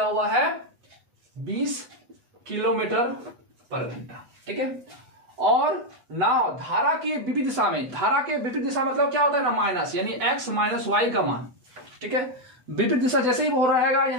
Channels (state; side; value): late; left; 8.1 ms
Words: हुआ है 20 किलोमीटर पर घंटा। ठीक है, और नाव धारा के विपरीत दिशा में, धारा के विपरीत दिशा मतलब क्या होता है ना, माइनस, यानी एक्स माइनस वाई का मान। ठीक है, विपरीत दिशा जैसे ही हो रहेगा